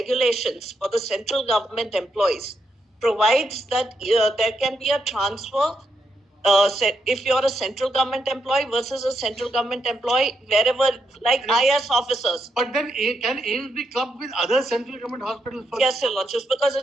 for the central government employees provides that there can be a transfer if you're a central government employee versus a central government employee wherever, like IS officers. But then can aims be clubbed with other central government hospitals? Yes, Your Lordships, because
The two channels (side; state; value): both; normal; correlation 0.80